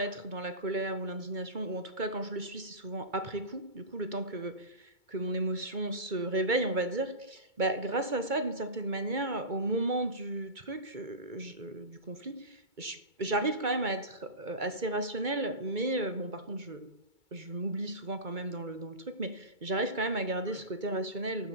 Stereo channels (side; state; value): left; late; 2.2 ms